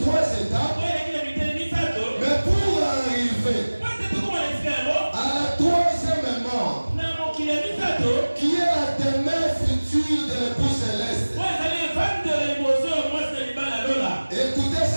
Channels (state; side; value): inverted; both; correlation -1.00